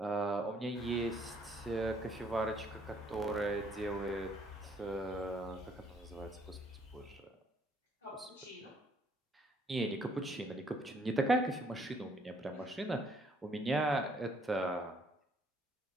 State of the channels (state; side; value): normal; both; correlation 0.65